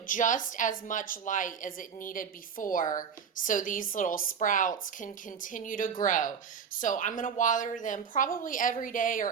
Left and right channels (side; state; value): left; quieter; 6.9 dB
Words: just as much light as it needed before, so these little sprouts can continue to grow. So I'm going to water them probably every day